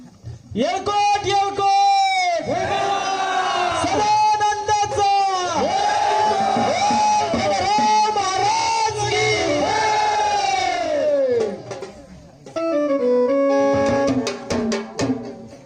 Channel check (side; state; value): both; identical; correlation 1.00